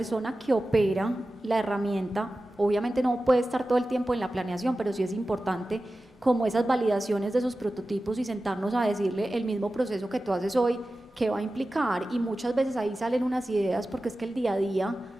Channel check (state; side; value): normal; both; correlation 0.95